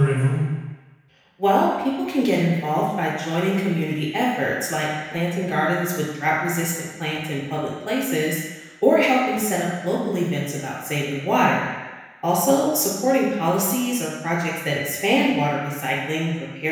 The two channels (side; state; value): both; identical; correlation 1.00